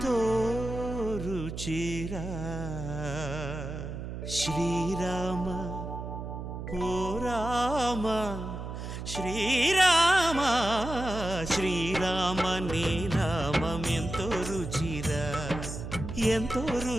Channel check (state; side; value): noise; right; hum, 7 dB below the sound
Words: రుచిరా శ్రీరామ ఓ రామ శ్రీరామ శ్రీరామ నీ నామం ఎంతో రుచిరా ఎంతో